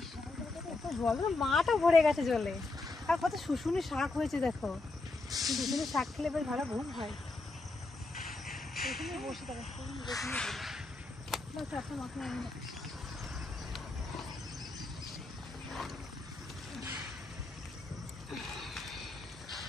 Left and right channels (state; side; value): quieter; right; 3.3 dB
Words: জল মাটা ভরে গেছে জলে। আর কত শুশুনি শাক হয়েছে দেখো, শুশুনি শাক খেলে বেশ ভালো ঘুম হয়। এখানে বসে থাকো, চারটা মাথা আমি না।